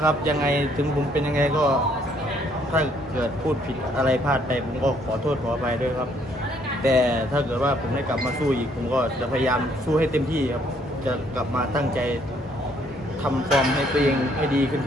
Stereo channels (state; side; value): normal; both; correlation 0.66